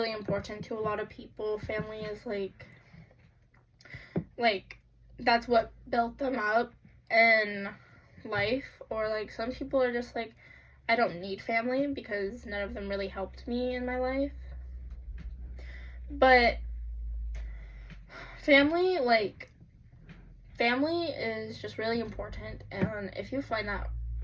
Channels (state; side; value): identical; both; correlation 1.00